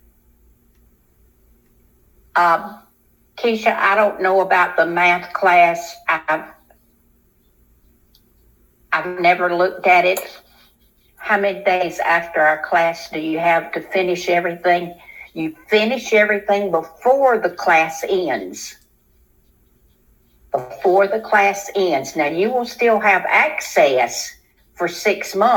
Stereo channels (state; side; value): identical; both; correlation 1.00